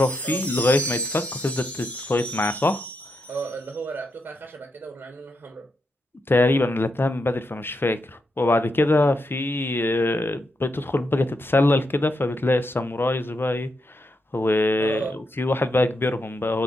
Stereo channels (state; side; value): normal; both; correlation 0.83